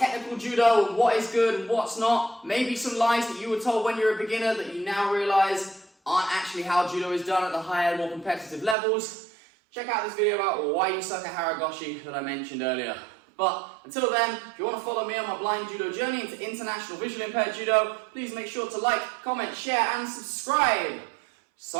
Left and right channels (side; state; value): left; drops out; at 8.8 s